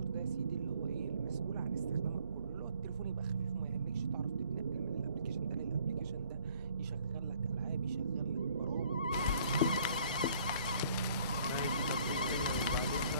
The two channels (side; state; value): both; inverted; correlation -0.59